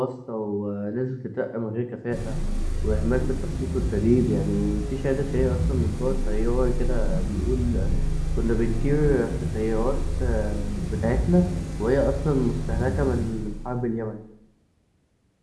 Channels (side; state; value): both; identical; correlation 1.00